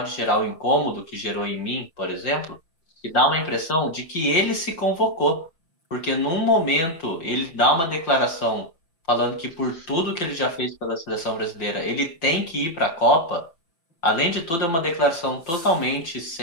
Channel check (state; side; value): late; right; 5.9 ms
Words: gerar o incômodo que gerou em mim, por exemplo, que dá uma impressão de que ele se convocou. Porque num momento ele dá uma declaração falando que por tudo que ele já fez pela seleção brasileira, ele tem que ir para a Copa. Além de tudo, é uma declaração totalmente